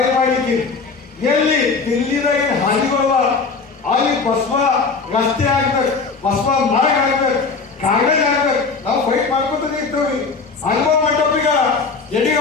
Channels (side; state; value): right; quieter; 4.6 dB